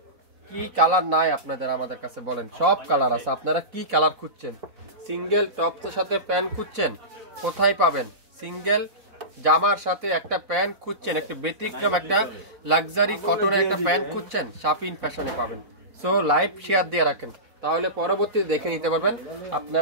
কি কালার নাই আপনাদের আমাদের কাছে বলেন, সব কালার আছে। আপনারা কি কালার খুঁজছেন? সিঙ্গেল টপসের সাথে প্যান্ট খুঁজছেন, কোথায় পাবেন? সিঙ্গেল জামার সাথে একটা প্যান্ট খুঁজছেন, একটা ব্যতিক্রম একটা লাক্সারি কটনের একটা প্যান্ট খুঁজছেন, শাপিন ফ্যাশনে পাবেন। সো লাইভ শেয়ার দিয়ে রাখেন, তাহলে পরবর্তীতে দেখে নিতে পারবেন।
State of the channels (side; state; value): left; late; 4.0 ms